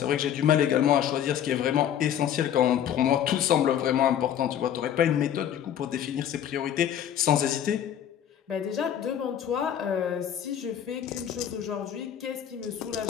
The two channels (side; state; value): right; quieter; 9.9 dB